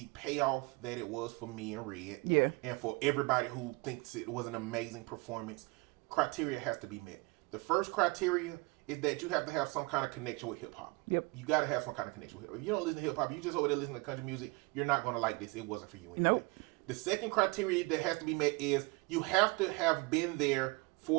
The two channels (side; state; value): left; quieter; 26.1 dB